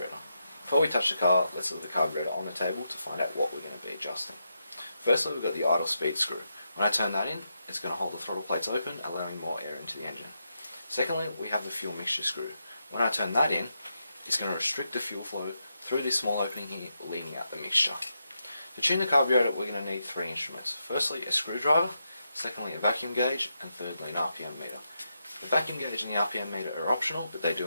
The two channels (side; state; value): both; inverted; correlation -0.84